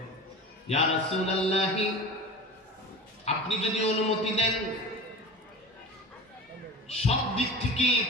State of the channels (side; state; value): both; normal; correlation 0.33